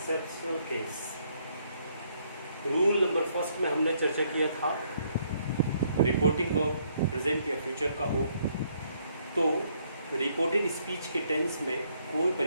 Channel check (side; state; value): both; inverted; correlation -0.70